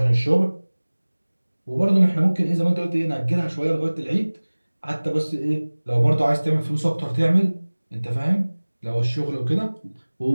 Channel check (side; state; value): both; inverted; correlation -1.00